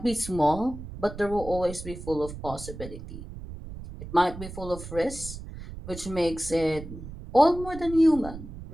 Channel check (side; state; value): right; noise; rumble, 11 dB below the sound